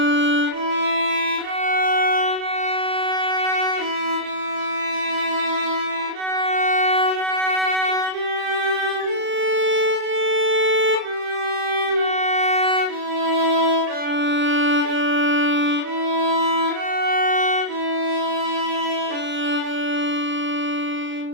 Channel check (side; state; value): left; late; 35 ms